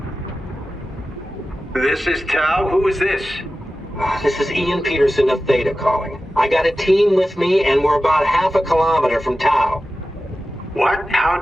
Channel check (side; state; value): both; normal; correlation 0.94